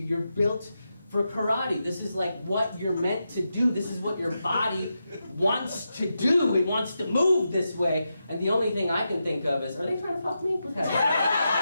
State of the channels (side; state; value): both; inverted; correlation -0.87